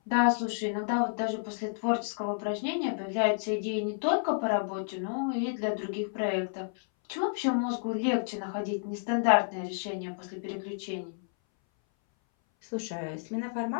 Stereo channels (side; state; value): right; silent; 57 dB below the other